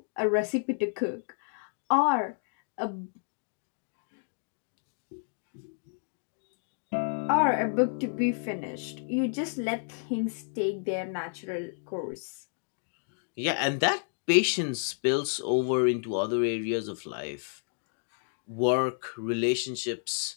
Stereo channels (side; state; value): right; silent; digital silence